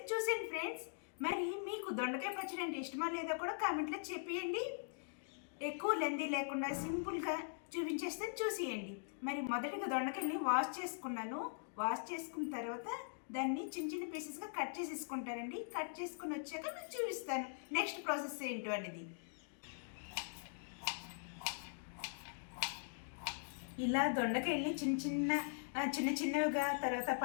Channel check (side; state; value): right; silent; digital silence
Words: చూసేయండి ఫ్రెండ్స్. మరి మీకు దొండకాయ పచ్చడి అంటే ఇష్టమా లేదా కూడా కామెంట్లో చెప్పేయండి. ఎక్కువ లెందీ లేకుండా సింపుల్గా చూపించేస్తాను, చూసేయండి. మరి మొదటిగా దొండకాయల్ని వాష్ చేసుకున్నాను. వాష్ చేసుకున్న తర్వాత దాన్ని చిన్న చిన్న పీసెస్గా కట్ చేసేసుకుంటానండి. కట్ చేసుకుని వచ్చాక మీకు చూపిస్తాను నెక్స్ట్ ప్రాసెస్ ఏంటో అనేది. ఇలా దొండకాయల్ని చిన్న చిన్నవిగా తర్వాత